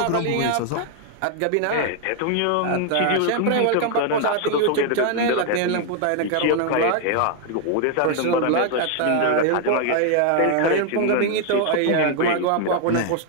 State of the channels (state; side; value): different; both; correlation 0.00